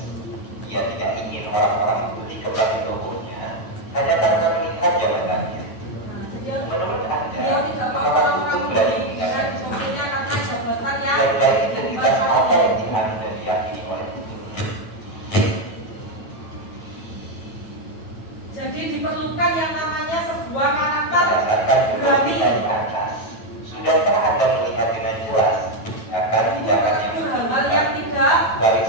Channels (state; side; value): late; right; 9.1 ms